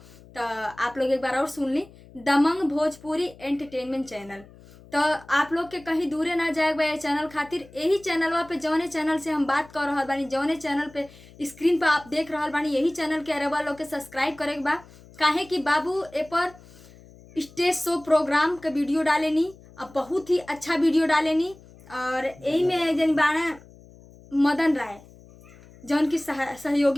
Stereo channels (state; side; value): noise; left; hum, 23 dB below the sound